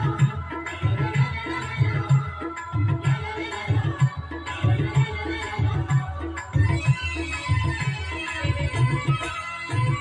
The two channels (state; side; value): identical; both; correlation 1.00